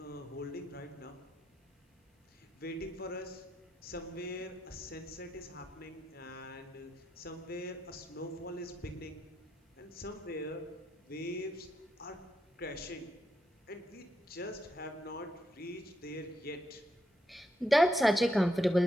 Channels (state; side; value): normal; both; correlation 0.82